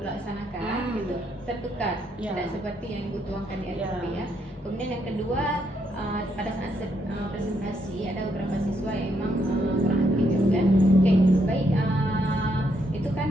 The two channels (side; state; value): both; normal; correlation 0.75